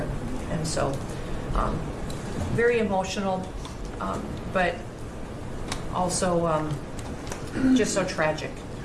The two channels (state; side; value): identical; both; correlation 1.00